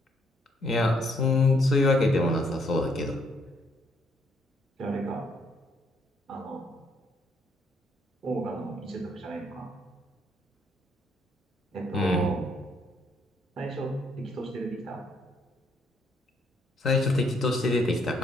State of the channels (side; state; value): both; normal; correlation 0.70